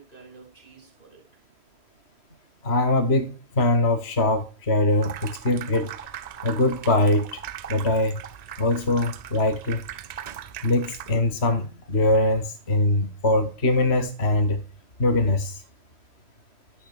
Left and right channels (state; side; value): late; right; 3.0 ms